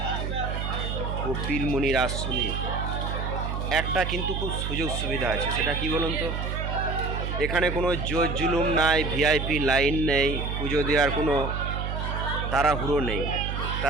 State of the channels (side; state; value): right; noise; hum, 3 dB below the sound